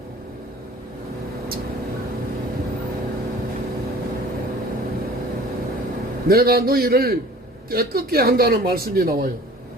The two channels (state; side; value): normal; both; correlation 0.46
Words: 내가 너희를 깨끗게 한다는 말씀이 나와요.